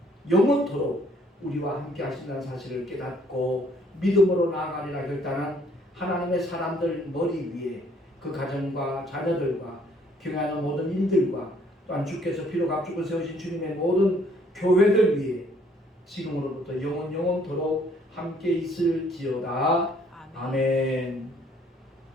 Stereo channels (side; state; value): both; normal; correlation 0.63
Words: 영원토록 우리와 함께 하신다는 사실을 깨닫고 믿음으로 나아가리라 결단한 하나님의 사람들 머리 위에 그 가정과 자녀들과 경영하는 모든 일들과 또한 주께서 피로 값주고 세우신 주님의 모든 교회들 위에 지금으로부터 영원토록 함께 있을지어다. 아멘.